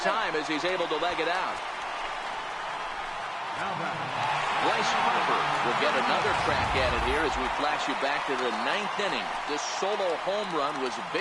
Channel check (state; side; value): identical; both; correlation 1.00